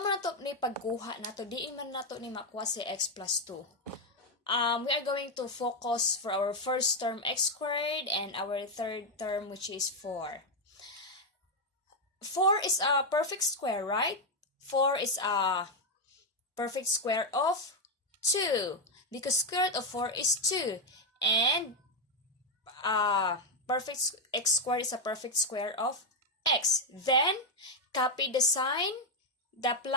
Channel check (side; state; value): both; normal; correlation 0.04